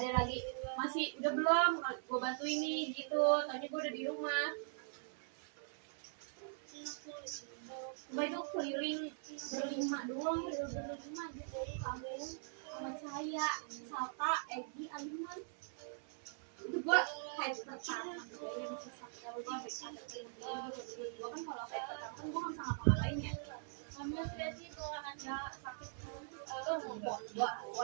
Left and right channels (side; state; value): left; silent; 50 dB below the other